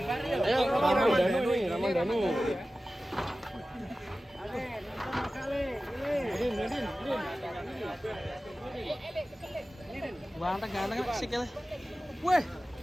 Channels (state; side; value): normal; both; correlation 0.95